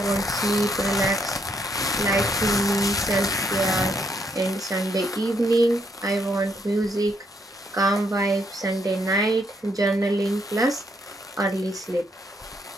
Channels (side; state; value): both; normal; correlation 0.74